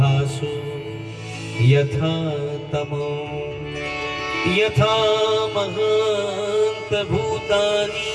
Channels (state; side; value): identical; both; correlation 1.00